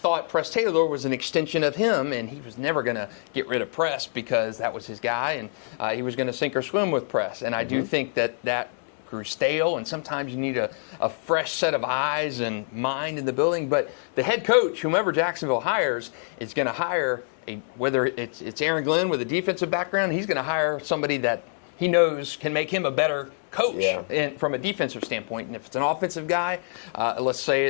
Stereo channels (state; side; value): silent; right; digital silence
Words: Press Taylor was an extension of him, and he was never going to get rid of Press because that was his guy, and he was going to sink or swim with Press. And I do think that grew stale, and sometimes you need a fresh set of eyes and mind in the building. But the head coach, whomever Jacksonville hires, is going to hire whether it's Aaron Glenn with a defensive background, he's going to hire somebody that he knows can make him a better coach from a defensive standpoint. And if it's an offensive guy, let's say